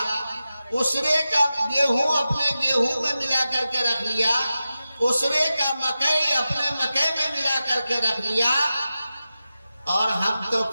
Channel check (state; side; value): inverted; both; correlation -0.93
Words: عشرے کا گیہوں اپنے گیہوں میں ملا کر کے رکھ لیا، عشرے کا مکئی اپنے مکئی میں ملا کر کے رکھ لیا، اور ہم تو